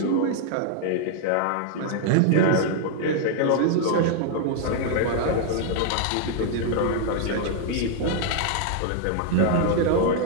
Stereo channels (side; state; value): both; different; correlation 0.00